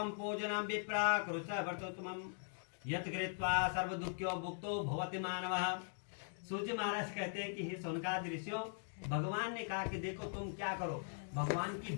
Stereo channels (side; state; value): right; silent; digital silence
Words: पूजनं विप्रा कुरुष्व वर्तोत्तमं यत् कृत्वा सर्व दुःख्यो भुक्तो भवति मानवः। सूर्य महाराज कहते हैं कि हे सोनकादि ऋषियों, भगवान ने कहा कि देखो तुम क्या करो, भगवान की